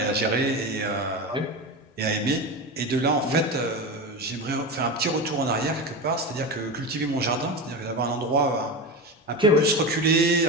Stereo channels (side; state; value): both; normal; correlation 0.21